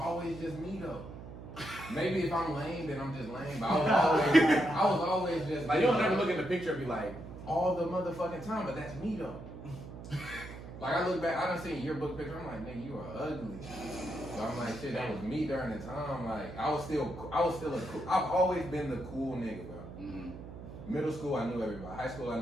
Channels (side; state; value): right; noise; hum, 12 dB below the sound